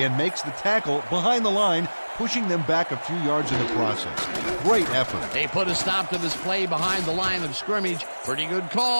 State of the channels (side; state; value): both; inverted; correlation -1.00